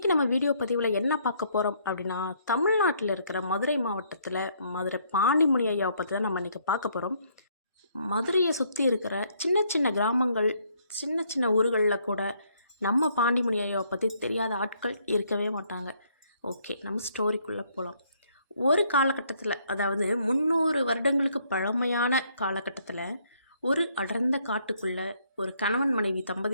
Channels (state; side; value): inverted; both; correlation -0.68